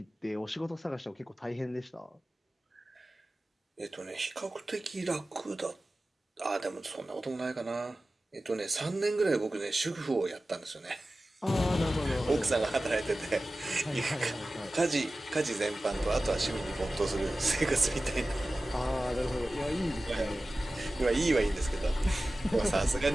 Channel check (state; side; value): normal; both; correlation 0.96